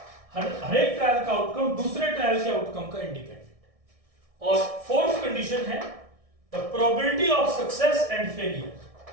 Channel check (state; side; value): late; left; 1.6 ms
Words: हर एक ट्रायल का आउटकम दूसरे ट्रायल के आउटकम का इंडिपेंडेंट. और फोर्थ कंडीशन है the probability of success and failure.